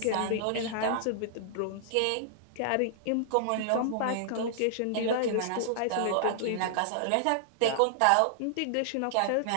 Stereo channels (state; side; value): different; both; correlation -0.01